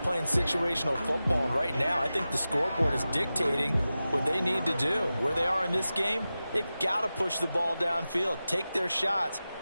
playing situational football, and right now I think the scoreboard is dictating what they need to do. Where they are in this game, they've got to push the ball downfield, take their shots,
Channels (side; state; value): both; inverted; correlation -0.94